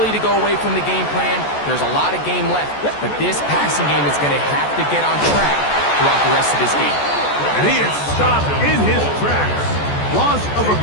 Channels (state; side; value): late; right; 14 ms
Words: to go away from the game plan. There's a lot of game left, but this passing game is going to have to get on track throughout the rest of this game. And he is stopped in his tracks. Loss of a